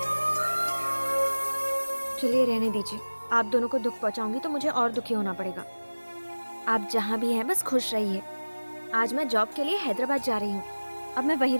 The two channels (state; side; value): inverted; both; correlation -1.00